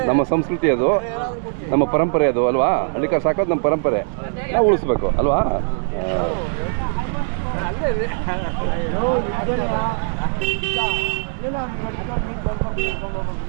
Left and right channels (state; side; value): silent; left; digital silence